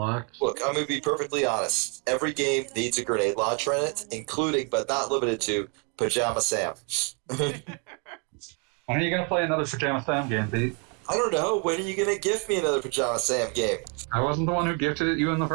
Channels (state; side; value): quieter; left; 36.1 dB